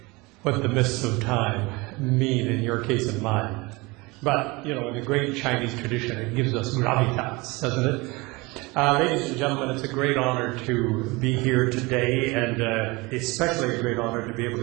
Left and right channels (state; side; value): quieter; left; 24.3 dB